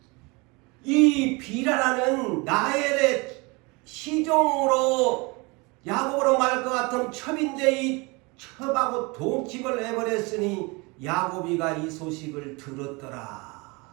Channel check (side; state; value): left; quieter; 27.1 dB